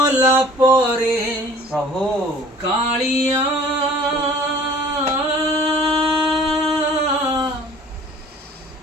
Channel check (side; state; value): both; normal; correlation 0.49